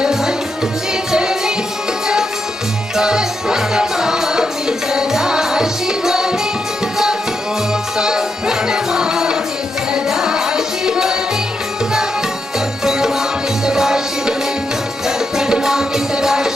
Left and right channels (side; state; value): both; normal; correlation 0.84